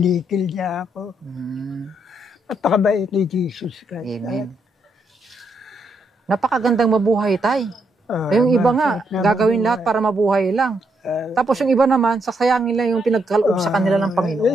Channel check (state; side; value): normal; both; correlation 0.77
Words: niya ako. At pakabait ni Jesus Christ. Amen. Napakagandang mabuhay tayo. Yung iba nga, gagawin lahat para mabuhay lang. Tapos yung iba naman, sasayangin lang yung pinagkaloob sa kanila ng Panginoon.